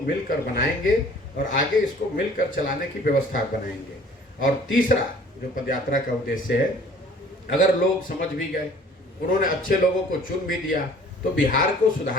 बनाएंगे और आगे इसको मिलकर चलाने की व्यवस्था बनाएंगे। और तीसरा जो पदयात्रा का उद्देश्य है, अगर लोग समझ भी गए, उन्होंने अच्छे लोगों को चुन भी दिया, तो बिहार को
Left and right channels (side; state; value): both; normal; correlation 0.51